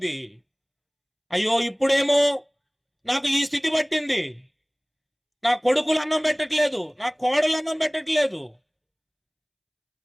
అయ్యో ఇప్పుడేమో నాకు ఈ స్థితి పట్టింది. నా కొడుకులు అన్నం పెట్టట్లేదు, నా కోడలు అన్నం పెట్టట్లేదు.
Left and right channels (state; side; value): identical; both; correlation 1.00